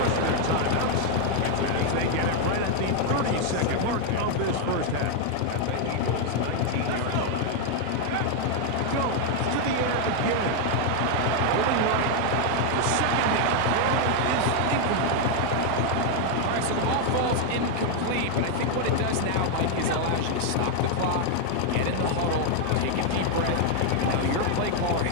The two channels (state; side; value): different; both; correlation 0.01